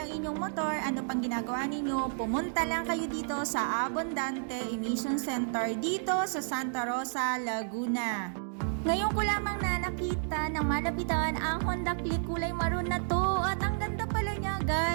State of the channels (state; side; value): silent; left; digital silence